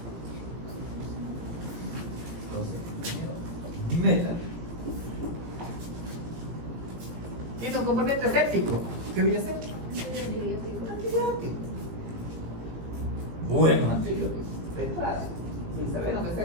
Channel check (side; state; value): left; late; 18 ms